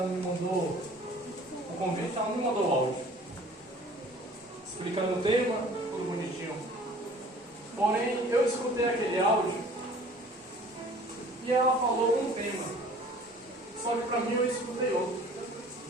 me mandou o convite, ela me mandou o áudio, explicando o tema, tudo bonitinho. Porém, eu escutei aquele áudio e ela falou um tema, só que para mim eu escutei outro.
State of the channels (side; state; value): both; normal; correlation 0.50